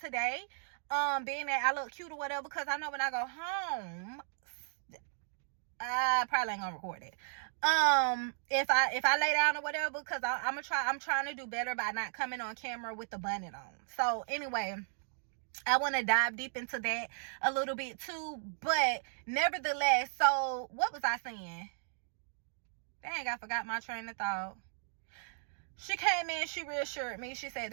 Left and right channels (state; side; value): silent; left; digital silence